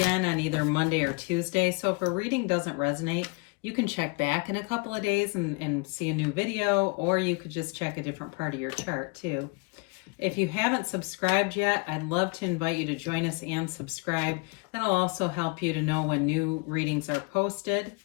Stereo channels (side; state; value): right; quieter; 31.4 dB